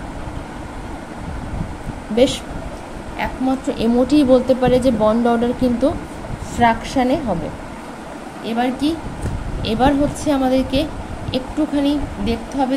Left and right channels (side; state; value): both; identical; correlation 1.00